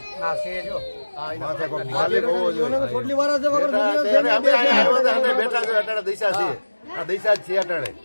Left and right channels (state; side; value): inverted; both; correlation -1.00